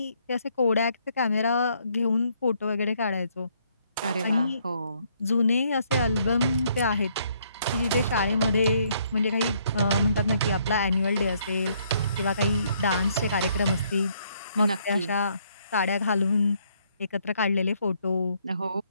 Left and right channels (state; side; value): inverted; both; correlation -0.69